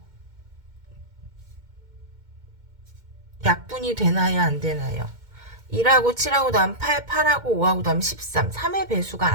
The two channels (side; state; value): left; late; 2.2 ms